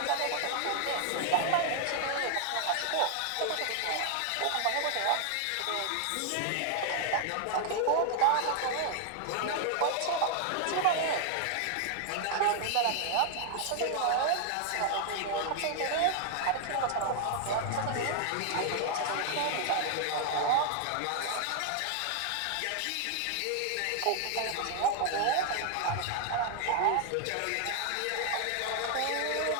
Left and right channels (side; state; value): both; different; correlation 0.00